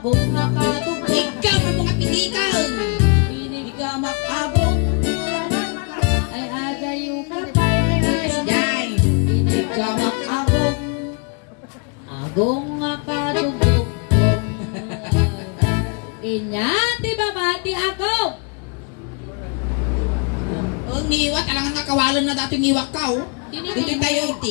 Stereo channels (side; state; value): right; quieter; 34.0 dB